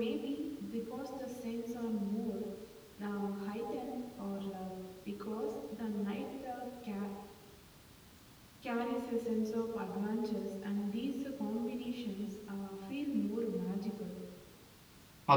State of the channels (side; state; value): both; identical; correlation 1.00